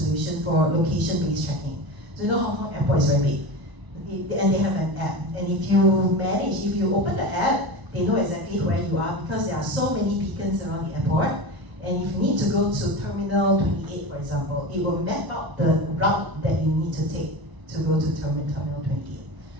for location-based tracking. So you know Hong Kong Airport is very big, and they have an app. And if you open the app, they know exactly where you are because there are so many beacons around the airport. And if you need to go to Terminal 28, for example, it will map out the route that you need to take to go to Terminal 28.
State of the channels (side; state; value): left; late; 1.0 ms